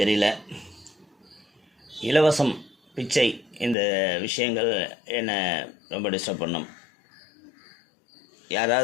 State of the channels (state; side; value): drops out; right; at 3.8 s